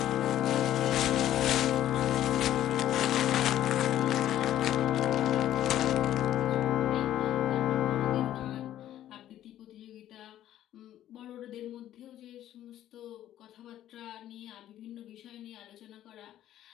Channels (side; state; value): right; quieter; 12.4 dB